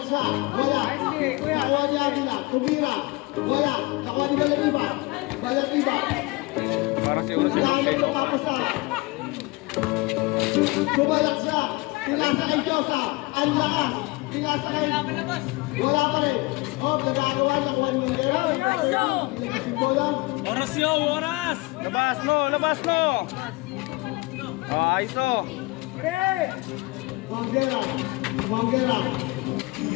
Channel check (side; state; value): right; quieter; 23.6 dB